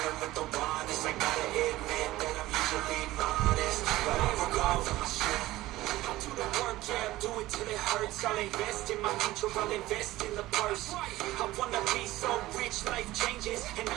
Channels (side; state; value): left; quieter; 17.0 dB